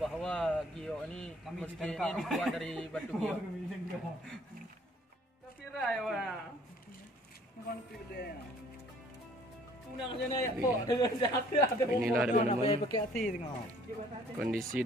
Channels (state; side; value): normal; both; correlation 0.57